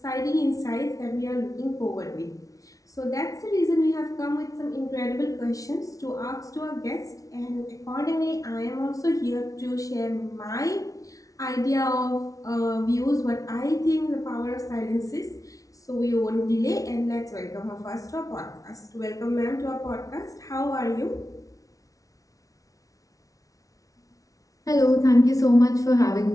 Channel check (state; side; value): late; right; 0.17 ms